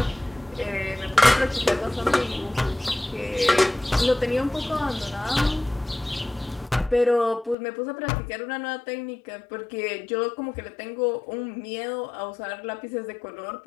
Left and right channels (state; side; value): drops out; right; at 7.6 s